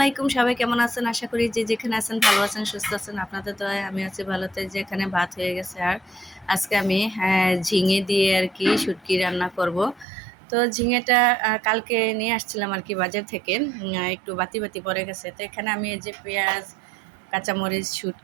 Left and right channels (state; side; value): drops out; left; at 10.1 s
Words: সবাই কেমন আছেন? আশা করি যে যেখানে আছেন ভালো আছেন, সুস্থ আছেন। আপনাদের তো আমি আছি ভালোতে। যে এখানে ভাত হয়ে গেছে, আর আজকে আমি ঝিঙে দিয়ে আর কি শুটকি রান্না করব। তো ঝিঙেটা কালকে নিয়ে আসছিলাম আর কি বাজার থেকে, একটু বাতি বাতি পড়ে গেছে। তো এখানে আমি এই যে পেঁয়াজ, কাঁচামরিচ,